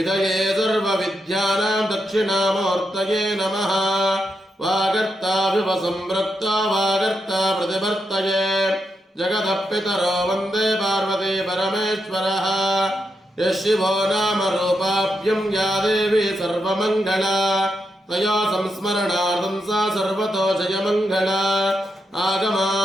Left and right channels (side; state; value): both; normal; correlation 0.84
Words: सर्वविद्यानां दक्षिणामूर्तये नमः। वागर्ता विवसंवृत्ता वागर्ता प्रतिवर्तये जगतः पितरो वन्दे पार्वती परमेश्वरः। यः शिवो नाम रूपाभ्यं या देवी सर्वमङ्गला तया संस्मरणार्थं सा सर्वतो जयमङ्गला।